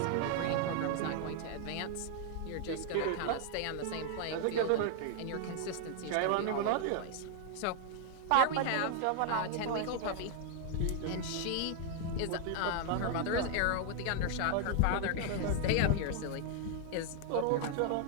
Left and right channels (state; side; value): different; both; correlation 0.00